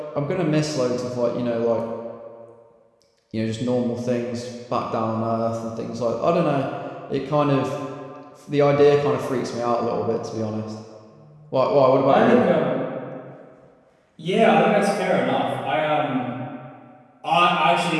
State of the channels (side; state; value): both; identical; correlation 1.00